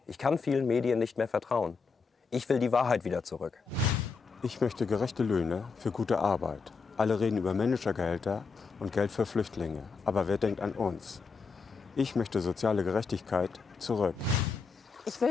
Ich kann vielen Medien nicht mehr vertrauen. Ich will die Wahrheit wieder zurück. Ich möchte gerechte Löhne für gute Arbeit. Alle reden über Managergehälter und Geld für Flüchtlinge. Aber wer denkt an uns? Ich möchte soziale Gerechtigkeit zurück. Ich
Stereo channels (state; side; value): quieter; right; 4.9 dB